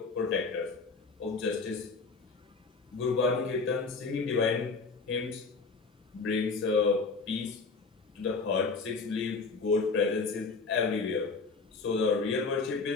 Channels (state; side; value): quieter; right; 4.3 dB